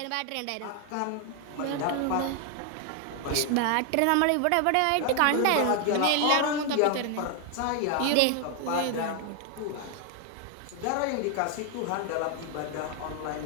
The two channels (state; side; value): different; both; correlation 0.01